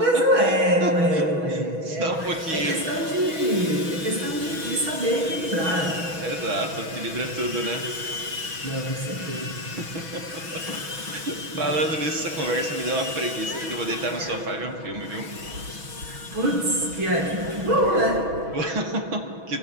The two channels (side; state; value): left; late; 6.2 ms